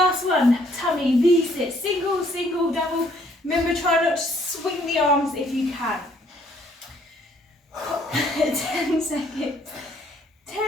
one. Tummy V-sit. Single, single, double. Remember, try not to swing the arms if you can. 10 seconds. 10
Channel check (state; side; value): normal; both; correlation 0.64